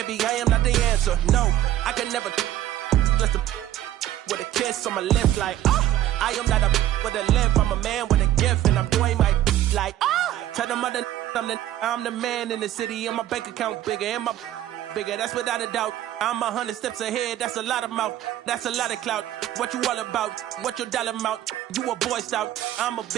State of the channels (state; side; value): quieter; left; 12.9 dB